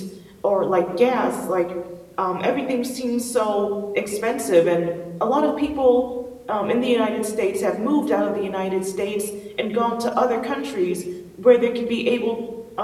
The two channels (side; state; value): both; identical; correlation 1.00